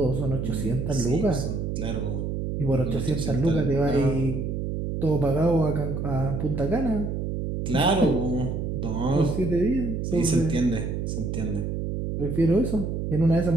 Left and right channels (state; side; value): noise; right; hum, 2 dB below the sound